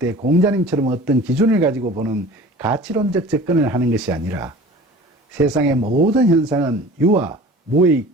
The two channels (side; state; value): both; normal; correlation 0.42